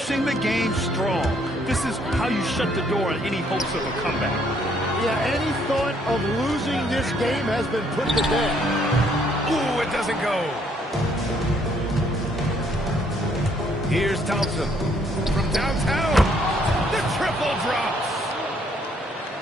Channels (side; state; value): both; normal; correlation 0.67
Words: the game strong. This is how you shut the door on any hopes of a comeback. Yeah, any thought of losing this game has been put to bed. Ooh, it doesn't go. Here's Thompson from downtown. The triple drops.